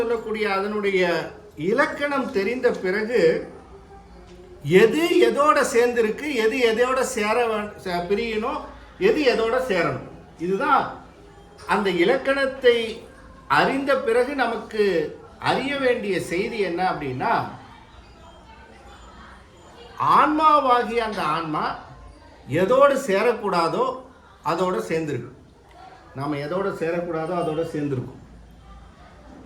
அதனுடைய இலக்கணம் தெரிந்த பிறகு எது எதோட சேர்ந்திருக்கு, எது எதோட பிரியணும், எது எதோட சேரணும். இதுதான் அந்த இலக்கணத்தை அறிந்த பிறகு நமக்கு அறிய வேண்டிய செய்தி என்ன அப்படின்னா, ஆன்மாவாகிய அந்த ஆன்மா எதோடு சேரக்கூடாதோ அதோட சேர்ந்திருக்கு. நாம் எதோட சேரக்கூடாதோ அதோட சேர்ந்திருக்கும்.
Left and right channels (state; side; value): identical; both; correlation 1.00